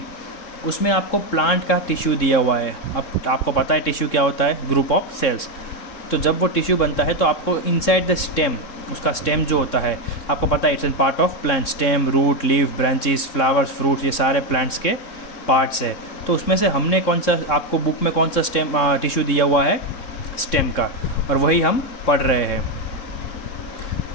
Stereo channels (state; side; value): late; right; 3.7 ms